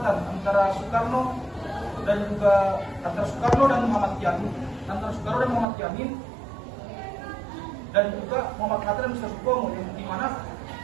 antara Soekarno dan Muhammad Yamin, dan juga Muhammad Hatta dan Mr. Supomo, yang dimana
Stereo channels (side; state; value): left; drops out; at 5.7 s